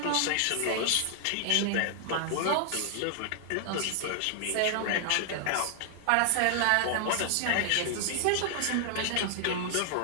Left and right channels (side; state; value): both; different; correlation 0.00